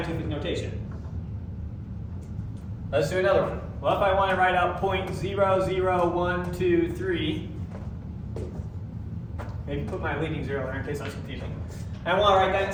notation. Let's do another one. Well, if I want to write out 0.00123, maybe put my leading zero there in case that's confusing. I want to write that in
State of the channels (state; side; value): identical; both; correlation 1.00